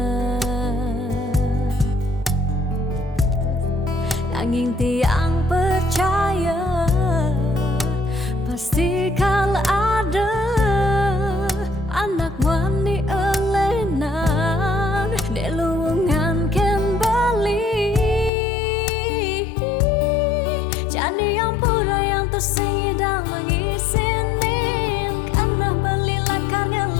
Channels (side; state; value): right; drops out; at 18.3 s